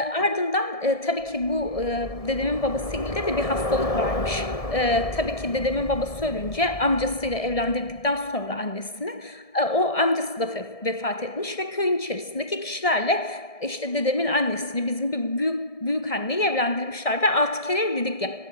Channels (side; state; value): right; late; 1.7 ms